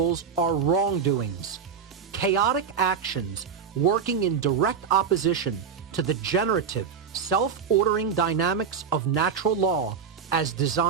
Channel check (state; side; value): quieter; left; 6.6 dB